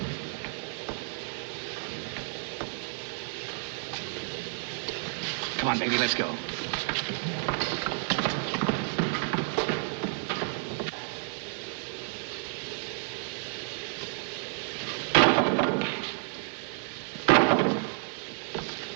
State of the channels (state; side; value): silent; left; 57 dB below the other